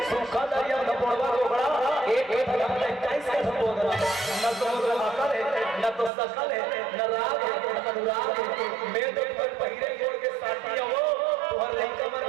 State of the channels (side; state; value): left; drops out; at 6.1 s